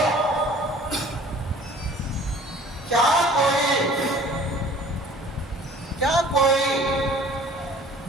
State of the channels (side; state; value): both; normal; correlation 0.50